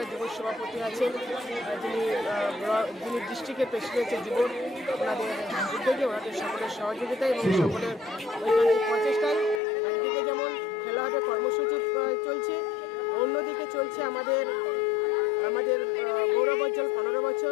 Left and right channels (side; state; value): right; drops out; at 9.6 s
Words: যুব সভাপতি আছেন, যিনি ডিস্ট্রিক্টের প্রেসিডেন্টের যুব, ওনাদের উদ্যোগে, ওনাদের সকলের সহযোগিতায় এবং সকলের ঐকান্তিক প্রচেষ্টায় একদিকে যেমন খেলা হবে কর্মসূচি চলছে, অন্যদিকে চলছে আমাদের গৌরবোজ্জ্বল 15